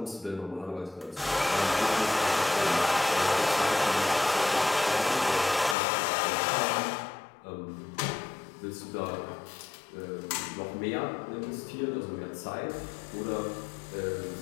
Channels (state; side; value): drops out; right; at 5.8 s